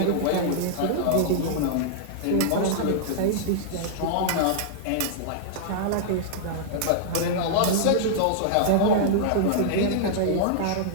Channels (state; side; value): different; both; correlation -0.02